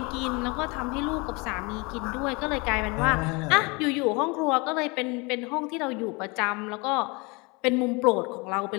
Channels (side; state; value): right; quieter; 28.0 dB